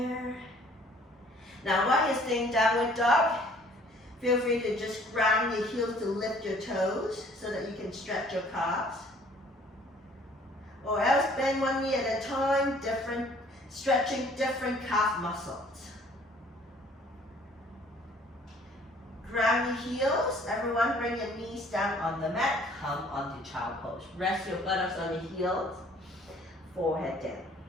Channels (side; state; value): both; normal; correlation 0.56